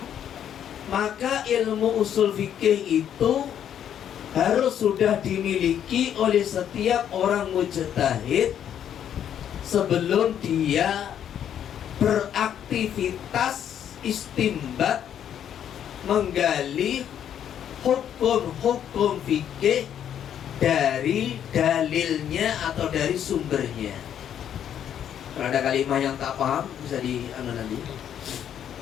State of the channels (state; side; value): quieter; right; 9.6 dB